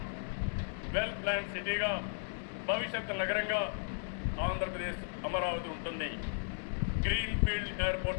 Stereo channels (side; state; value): right; silent; digital silence